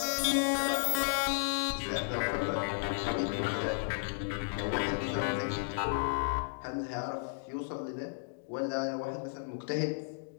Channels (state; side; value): silent; right; digital silence